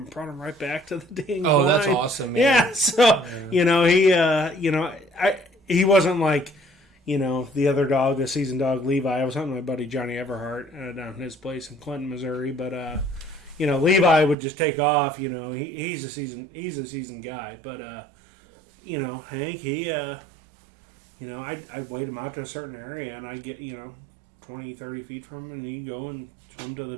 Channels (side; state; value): left; drops out; at 14.4 s